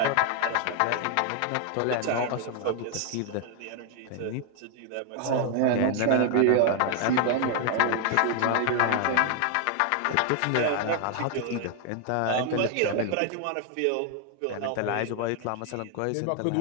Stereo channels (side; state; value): both; different; correlation 0.00